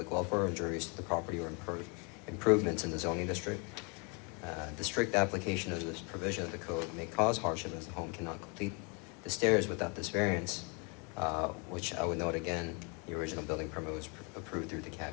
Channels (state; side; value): quieter; right; 33.7 dB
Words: welfare or injurious to the property or improvements in the zoning district. The strict application of this provision of the code may cause hardship as the home cannot complete the stairs without this variance, which I would note again, the original building permit was approved through